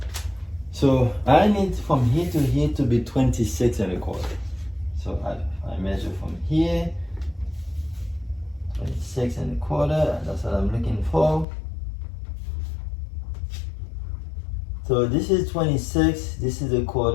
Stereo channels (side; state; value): right; drops out; at 11.5 s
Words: So I need from here to here to be 26 and a quarter. So I measure from here 26 and a quarter, that's what I'm looking for. So this is 26, this is a